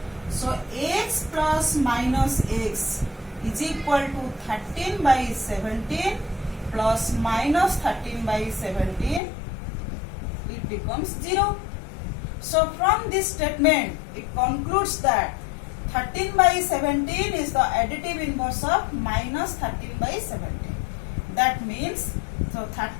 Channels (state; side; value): drops out; right; at 9.2 s